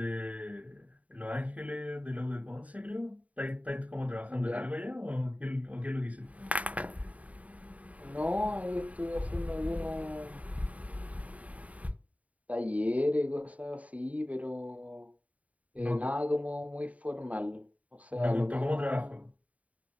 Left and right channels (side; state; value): left; late; 0.069 ms